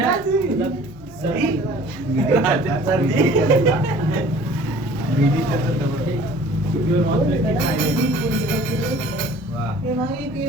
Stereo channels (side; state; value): both; normal; correlation 0.49